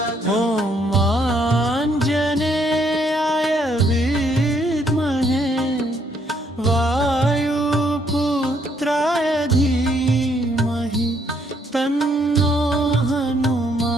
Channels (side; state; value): both; normal; correlation 0.70